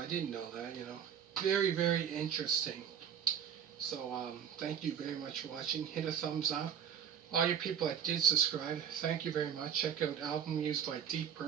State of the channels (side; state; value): left; quieter; 8.4 dB